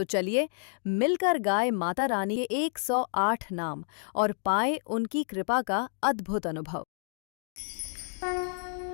चलिए मिलकर गाए माता रानी के 108 नाम और पाए उनकी कृपा का अद्भुत अनुभव।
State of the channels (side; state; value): right; silent; digital silence